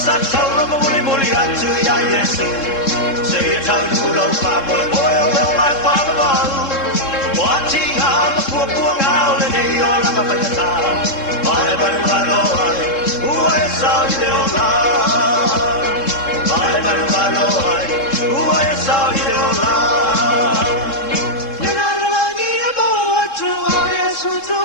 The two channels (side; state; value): right; late; 3.7 ms